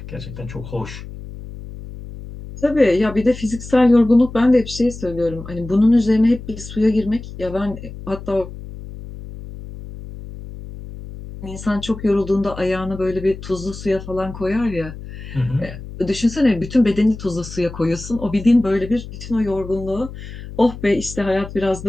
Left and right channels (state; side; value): noise; left; hum, 12 dB below the sound